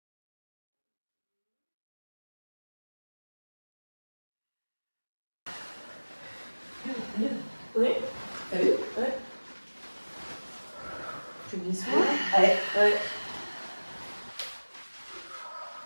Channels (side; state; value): both; inverted; correlation -1.00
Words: Oui. T'as vu? Ouais. Tu me dis ça? Ouais. Ouais.